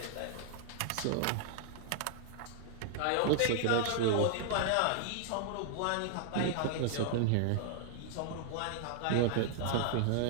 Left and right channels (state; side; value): different; both; correlation 0.00